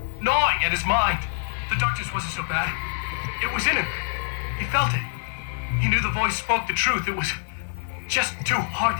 gnawing at his mind. The darkness wasn't so bad. It was in him. He felt it. He knew the voice spoke the truth. It was just too hard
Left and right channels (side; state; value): right; silent; digital silence